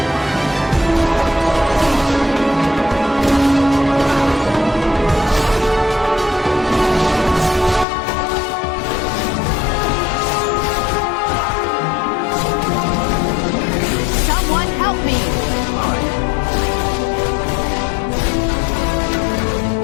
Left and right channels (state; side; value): drops out; right; at 7.9 s